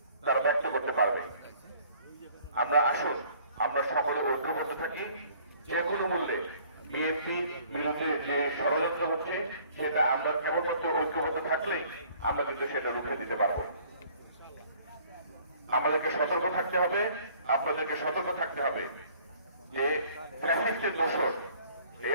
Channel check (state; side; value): inverted; both; correlation -0.56